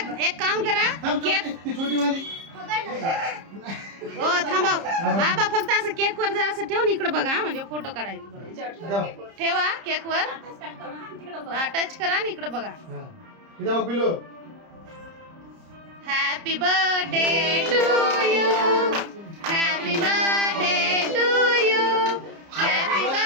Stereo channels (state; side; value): late; left; 30 ms